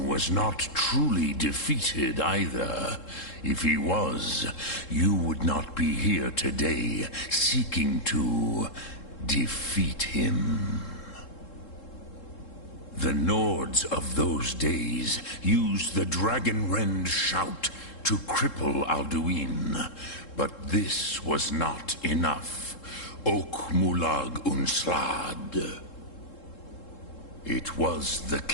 was not truly defeated either. If he was, you would not be here today seeking to defeat him. The Nords of those days used the Dragonrend shout to cripple Alduin, but this was not enough. Ok Mulag Unslad. It was the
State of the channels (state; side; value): late; right; 3.7 ms